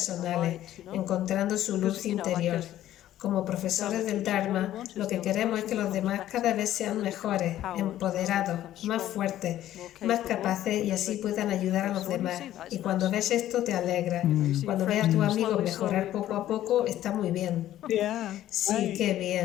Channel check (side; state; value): right; quieter; 13.0 dB